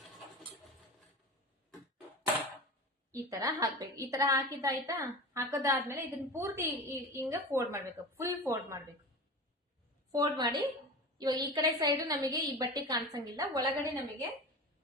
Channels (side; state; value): both; normal; correlation 0.30